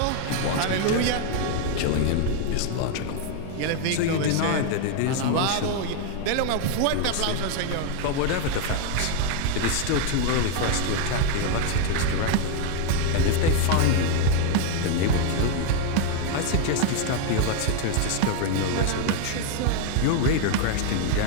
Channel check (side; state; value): both; different; correlation 0.01